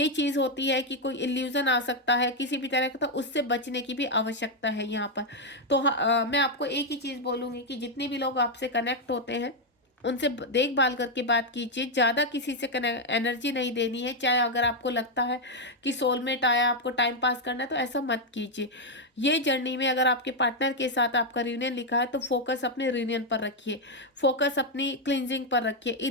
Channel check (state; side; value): normal; both; correlation 0.01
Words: चीज़ होती है कि कोई इल्यूजन आ सकता है किसी भी तरह का, तो उससे बचने की भी आवश्यकता है यहाँ पर। तो मैं आपको एक ही चीज़ बोलूँगी कि जितने भी लोग आपसे कनेक्ट होते हैं उनसे देखभाल करके बात कीजिए, ज़्यादा किसी से एनर्जी नहीं देनी है। चाहे अगर आपको लगता है कि सोलमेट आया, आपको टाइम पास करना है, तो ऐसा मत कीजिए। ये जर्नी में अगर आपके पार्टनर के साथ आपका रियूनियन लिखा है, तो फोकस अपने रियूनियन पर रखिए, फोकस अपनी क्लिनजिंग पर रखिए,